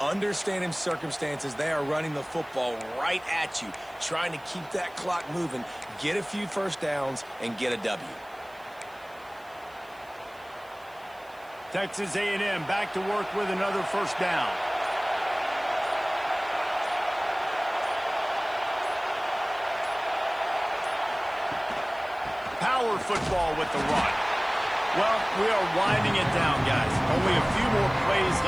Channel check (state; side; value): noise; right; hiss, 28 dB below the sound